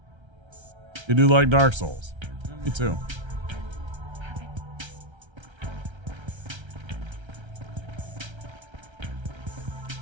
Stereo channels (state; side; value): late; left; 1.3 ms